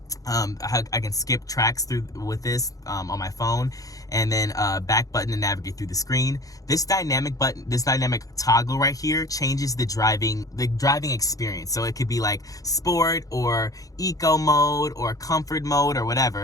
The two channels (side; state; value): right; late; 0.17 ms